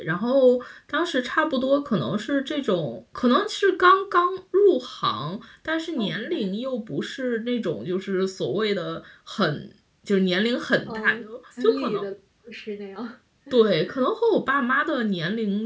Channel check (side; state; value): both; identical; correlation 1.00